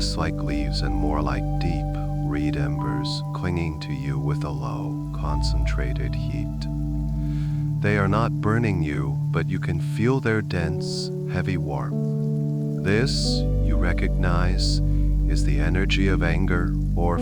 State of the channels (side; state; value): both; identical; correlation 1.00